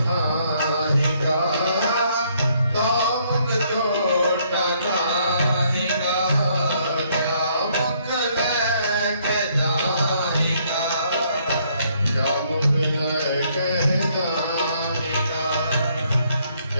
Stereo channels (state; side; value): inverted; both; correlation -0.68